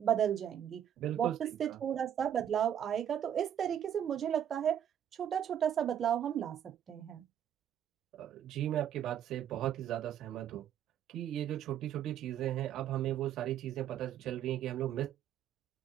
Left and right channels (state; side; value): quieter; left; 9.9 dB